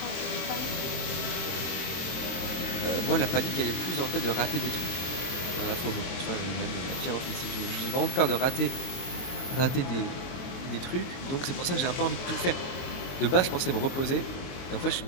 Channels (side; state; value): right; late; 23 ms